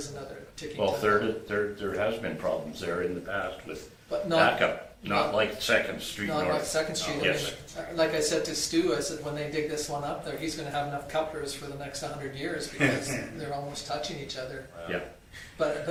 another ticking Well, time. there has been problems there in the past with But not, backup, not like 2nd Street not like North. 2nd Street. I mean, Yes. like I said to Stu, I said, when they dig this one up there, he's gonna have enough couplers for the next 100 years, because they're almost touching each other. Yeah. But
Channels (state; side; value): identical; both; correlation 1.00